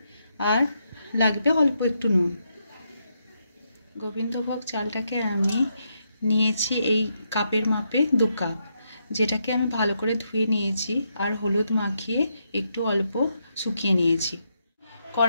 আর লাগবে অল্প একটু নুন। গোবিন্দভোগ চালটাকে আমি নিয়েছি এই কাপের মাপে 2 কাপ, যেটাকে আমি ভালো করে ধুয়ে নিয়েছি আর হলুদ মাখিয়ে একটু অল্প শুকিয়ে নিয়েছি।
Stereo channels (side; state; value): both; inverted; correlation -0.80